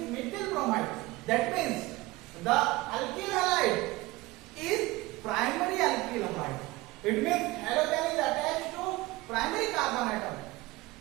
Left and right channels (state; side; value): quieter; left; 20.2 dB